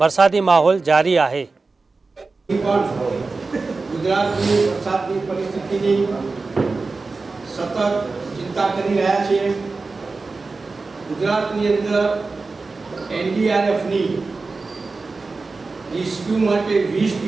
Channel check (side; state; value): left; quieter; 3.9 dB